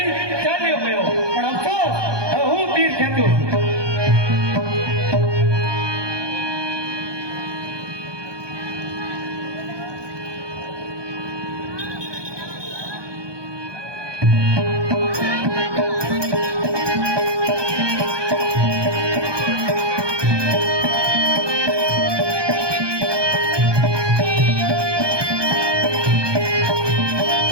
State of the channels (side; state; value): left; late; 1.2 ms